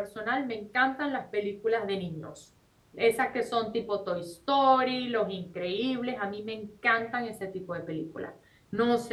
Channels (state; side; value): identical; both; correlation 1.00